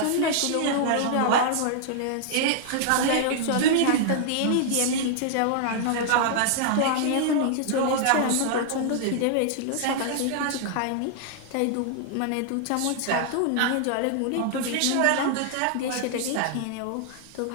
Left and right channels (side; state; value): both; different; correlation -0.01